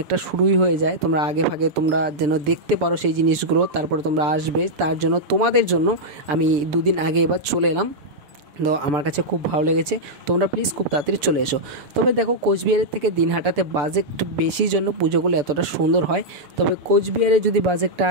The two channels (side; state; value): left; late; 6.9 ms